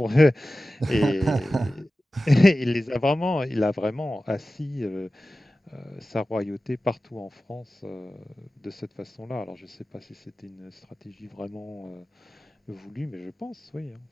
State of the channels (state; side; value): normal; both; correlation 0.95